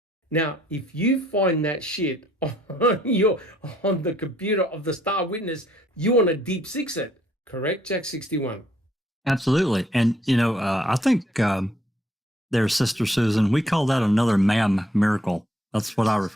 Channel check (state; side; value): normal; both; correlation 0.66